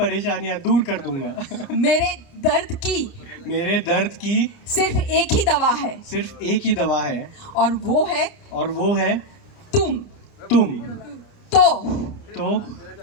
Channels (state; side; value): late; right; 29 ms